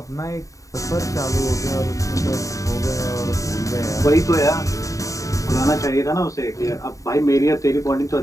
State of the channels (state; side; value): late; right; 0.16 ms